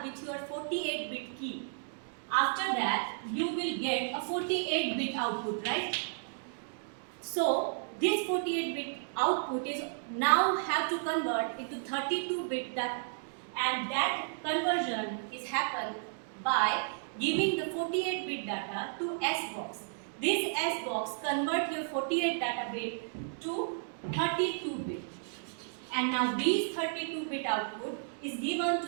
with your 48-bit key. After that, you will get a 48-bit output, right? So this 48-bit output is now have to convert into 32-bit data, and that conversion is happened by giving the 48-bit data to S box. This S box convert your 48 data bit to 32-bit, and now these 32-bit output is given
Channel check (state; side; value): silent; left; digital silence